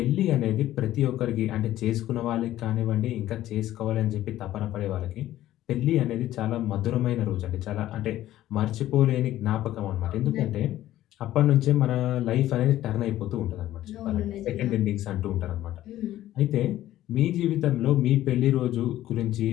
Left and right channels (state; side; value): quieter; right; 13.9 dB